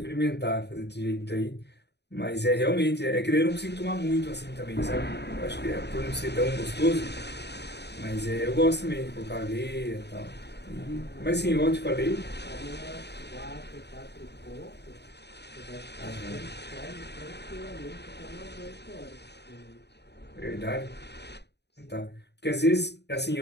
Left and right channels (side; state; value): right; late; 0.49 ms